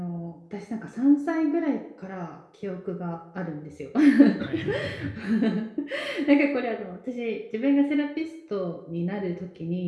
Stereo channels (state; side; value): identical; both; correlation 1.00